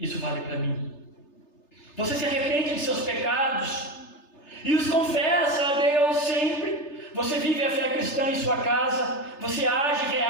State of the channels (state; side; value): late; right; 3.3 ms